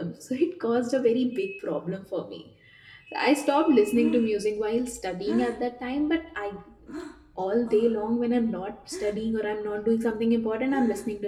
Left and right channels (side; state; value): both; identical; correlation 1.00